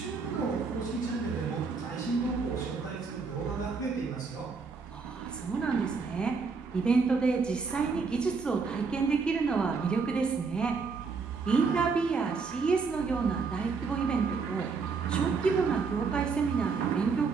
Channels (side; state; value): left; quieter; 4.8 dB